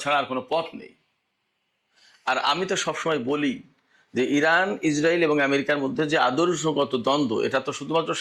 ছাড়া আর কোনো পথ নেই। আর আমি তো সবসময় বলি যে ইরান, ইসরায়েল এবং আমেরিকার মধ্যে যে আদর্শগত দ্বন্দ্ব, এটা তো শুধুমাত্র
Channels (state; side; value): identical; both; correlation 1.00